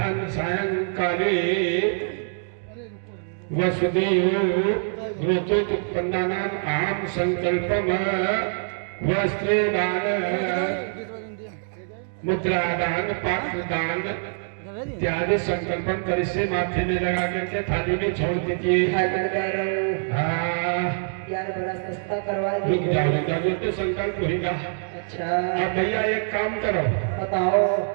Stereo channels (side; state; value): left; silent; digital silence